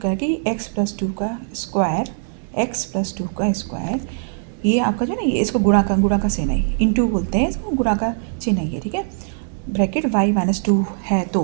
कह कि x + 2 का स्क्वायर, x + 2 का स्क्वायर, ये आपका जो है ना, ये इसको गुणा का सेना है, इंटू बोलते हैं इसको, गुणा का चिन्ह है ये। ठीक है, ब्रैकेट y - 2 है, तो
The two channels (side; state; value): left; silent; 65 dB below the other